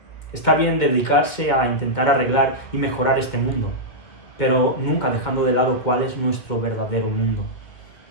Está bien dedicarse a intentar arreglar y mejorar este mundo, pero nunca dejando de lado cuál es nuestro verdadero mundo.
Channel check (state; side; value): late; right; 2.2 ms